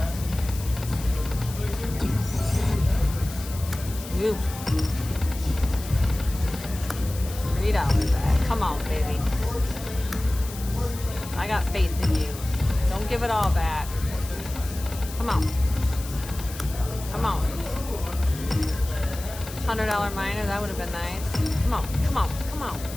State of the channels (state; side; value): noise; left; hiss, 13 dB below the sound